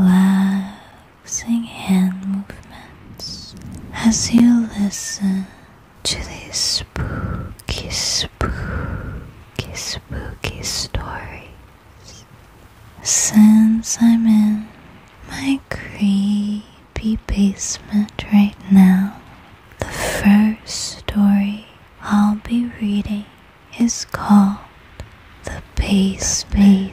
relaxing hand movements as you listen to these spooky stories. Since I'm in my creepy basement right now, the first story I'll be reading is called The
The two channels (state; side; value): identical; both; correlation 1.00